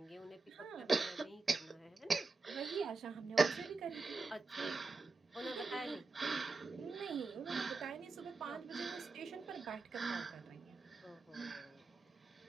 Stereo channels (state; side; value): quieter; left; 4.0 dB